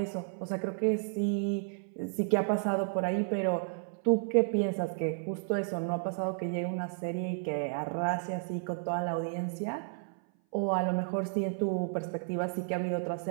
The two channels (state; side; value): silent; left; 56 dB below the other